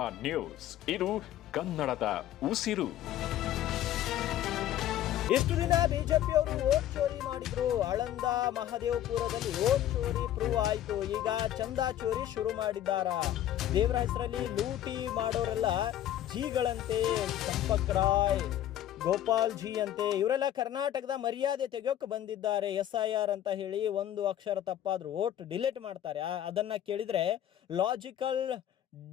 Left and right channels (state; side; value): quieter; right; 11.9 dB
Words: ನ್ಯೂಸ್. ಇದು ಕನ್ನಡದ ಉಸಿರು. ಇಷ್ಟು ದಿನ ಬಿಜೆಪಿಯವರು ವೋಟ್ ಚೋರಿ ಮಾಡಿದ್ರು. ಆಳಂದ ಮಹದೇವಪುರದಲ್ಲಿ ವೋಟ್ ಚೋರಿ ಪ್ರೂವ್ ಆಯ್ತು. ಈಗ ಚಂದಾ ಚೋರಿ ಶುರು ಮಾಡಿದ್ದಾರ. ದೇವರ ಹೆಸರಲ್ಲಿ ಲೂಟಿ ಮಾಡೋರೆಲ್ಲ ಜಿಗಳಂತೆ, ಚಂಪಕ್ ರಾಯ್, ಗೋಪಾಲ್ ಜಿ ಅಂತೆ, ಇವರೆಲ್ಲ ಕರ್ನಾಟಕದ ಮರ್ಯಾದೆ ತೆಗೆಯೋಕೆ ಬಂದಿದ್ದಾರೆ. SIR ಅಂತ ಹೇಳಿ ಒಂದು ಅಕ್ಷರ ತಪ್ಪಾದ್ರೂ ವೋಟ್ ಡಿಲೀಟ್ ಮಾಡ್ತಾರೆ. ಅದನ್ನ ಕೇಳಿದ್ರೆ ಲಾಜಿಕಲ್